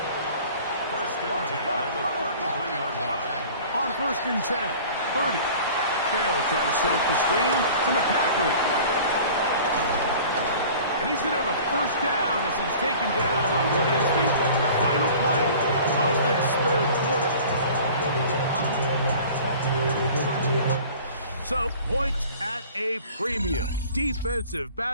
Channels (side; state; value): both; inverted; correlation -0.44